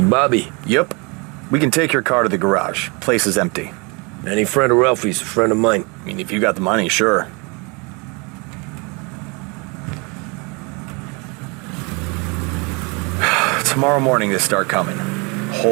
Bobby? Yep. We can take your car to the garage. Place is empty. Any friend of Ralphie's, a friend of mine. I mean, if you got the money, sure. Tomorrow morning they start coming.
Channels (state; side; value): quieter; left; 30.0 dB